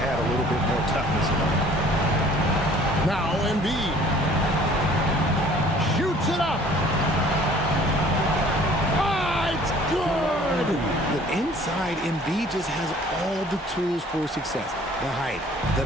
a little bit more toughness in it. Now Embiid shoots it up. Ah, it's good. The inside, Embiid just has all the tools for success. The height,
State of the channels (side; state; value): both; normal; correlation 0.53